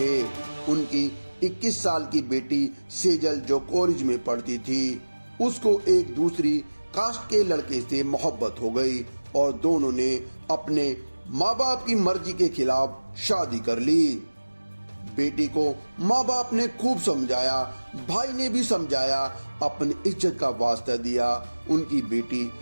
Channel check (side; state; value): both; inverted; correlation -1.00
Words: उनकी 21 साल की बेटी सेजल जो कॉलेज में पढ़ती थी, उसको एक दूसरी कास्ट के लड़के से मोहब्बत हो गई और दोनों ने अपने माँ बाप की मर्जी के खिलाफ शादी कर ली। बेटी को माँ बाप ने खूब समझाया, भाई ने भी समझाया, अपनी इज्जत का वास्ता दिया। उनकी बेटी